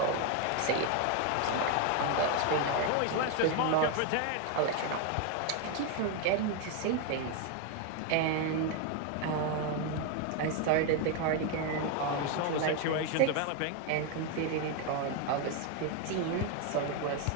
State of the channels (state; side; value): different; both; correlation 0.01